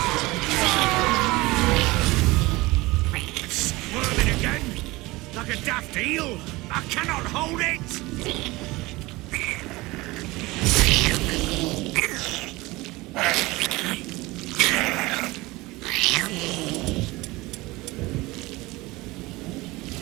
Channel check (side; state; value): left; quieter; 21.3 dB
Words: Squirming again, like a daft eel. I cannot hold it.